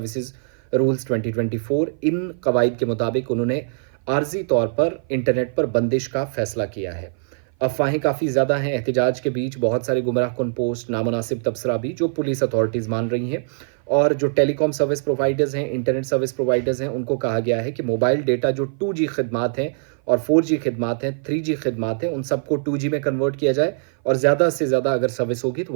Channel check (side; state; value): left; silent; 56 dB below the other